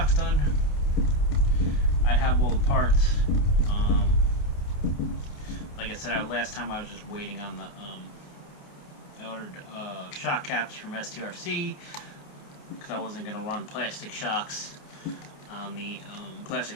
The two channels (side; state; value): right; late; 28 ms